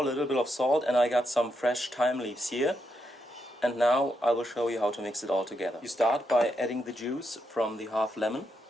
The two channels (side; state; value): both; normal; correlation 0.82